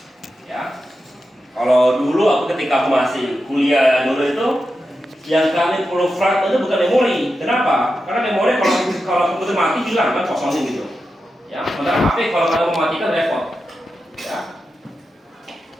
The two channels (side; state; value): both; normal; correlation 0.89